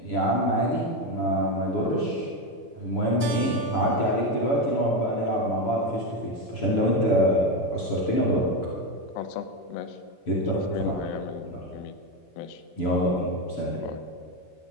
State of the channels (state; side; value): late; right; 7.0 ms